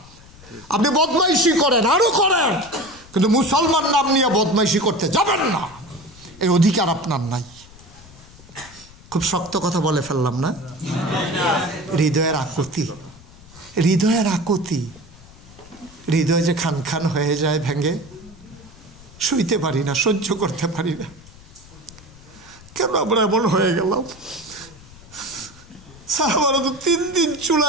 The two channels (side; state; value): left; noise; rumble, 22 dB below the sound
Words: আপনি বদমাইশি করেন, আরো করেন, কিন্তু মুসলমান নাম নিয়ে বদমাইশি করতে যাবেন না, এই অধিকার আপনার নাই। খুব শক্ত কথা বলে ফেললাম না? হৃদয়ের আকুতি, হৃদয়ের আকুতি, হৃদয় যে খান খান হয়ে যায়, ভেঙে শুইতে পারি না, সহ্য করতে পারি না। কেন আমরা এমন হয়ে গেলাম? সাহাবারা তো 3 দিন